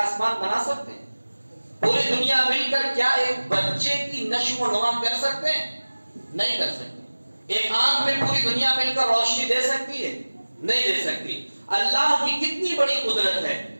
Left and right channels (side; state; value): both; inverted; correlation -1.00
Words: بنا سکتے ہیں؟ پوری دنیا مل کر کیا ایک بچے کی نشو و نما کر سکتے ہیں؟ نہیں کر سکتے. ایک آنکھ میں پوری دنیا مل کر روشنی دے سکتی ہے؟ نہیں دے سکتی. اللہ کی کتنی بڑی قدرت ہے